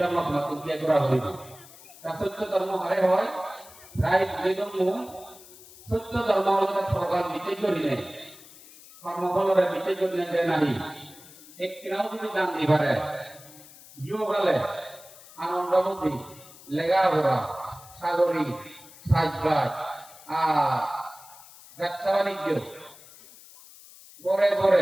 ধর্ম মাতুক দিয়ে করা হইব তা সত্য ধর্ম হারে হয় প্রায় যেজন্য সত্য ধর্ম হলে প্রকার বিচার করি নেই কর্মফলরে বিচার করি নেই নারী এক কিনাও যদি দান দিবারে ইয়ে গেলে আনন্দ বুদ্ধি লেখাপড়া সাগরী সাজবাজ আর ব্যবসা বাণিজ্য গড়ে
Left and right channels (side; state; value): left; noise; hiss, 20 dB below the sound